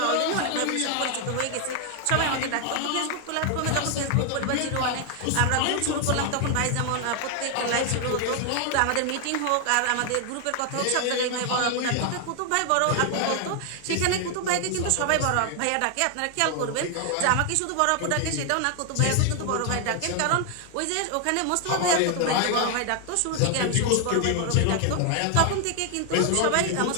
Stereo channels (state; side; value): different; both; correlation 0.00